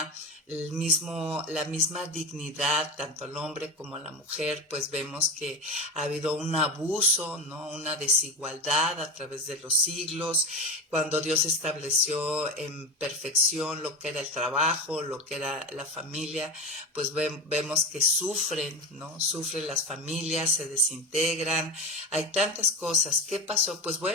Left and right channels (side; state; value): both; normal; correlation 0.23